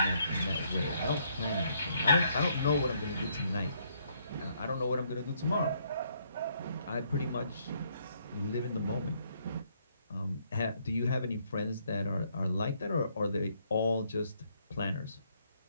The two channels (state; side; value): inverted; both; correlation -0.70